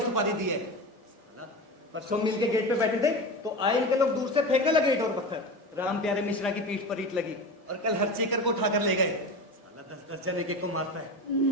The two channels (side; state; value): both; normal; correlation 0.27